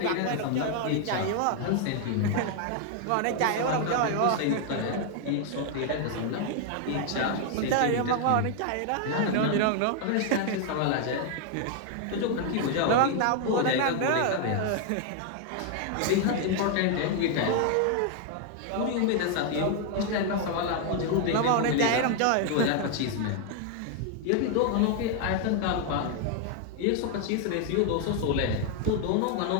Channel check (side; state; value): both; different; correlation 0.00